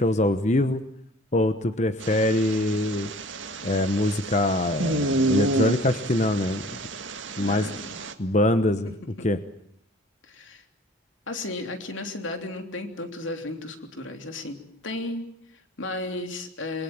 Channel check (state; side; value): normal; both; correlation 0.49